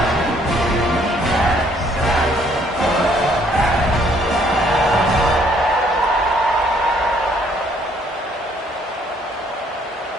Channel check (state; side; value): normal; both; correlation 0.64